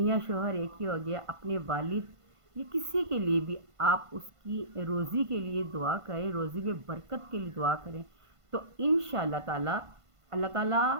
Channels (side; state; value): left; late; 1.5 ms